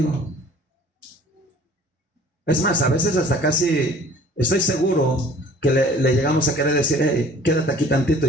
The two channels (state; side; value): normal; both; correlation 0.50